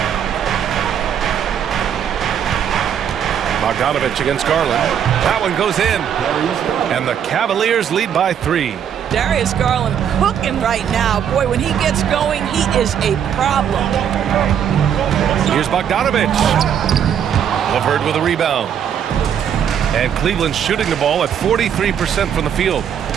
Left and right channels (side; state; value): left; quieter; 8.8 dB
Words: Bogdanovich against Garland. That one goes in. And the Cavaliers lead by 3. Darius Garland cooking right now. Boy, when he gets going, he is a problem. Here's Bogdanovic. LeVert with a rebound. And Cleveland shooting the ball at 43% from the field.